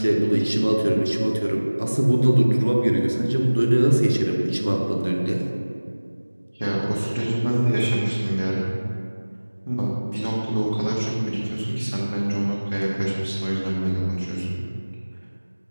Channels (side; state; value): both; inverted; correlation -1.00